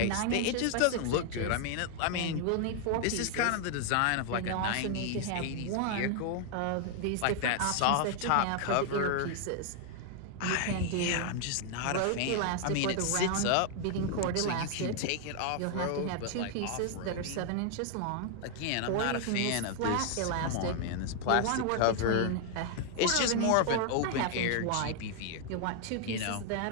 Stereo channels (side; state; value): both; different; correlation 0.00